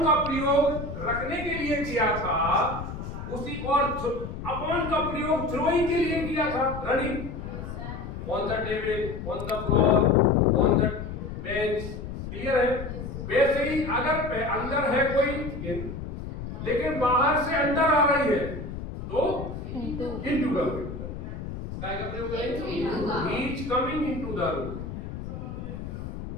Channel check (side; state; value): left; noise; rumble, 8 dB below the sound